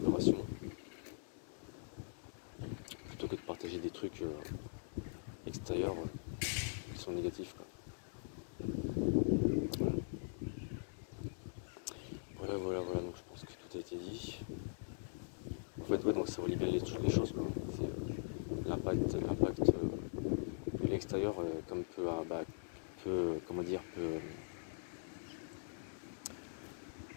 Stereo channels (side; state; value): right; silent; digital silence